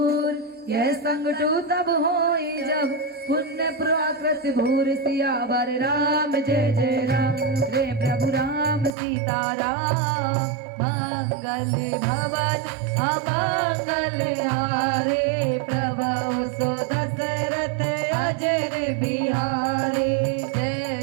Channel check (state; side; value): drops out; left; at 8.9 s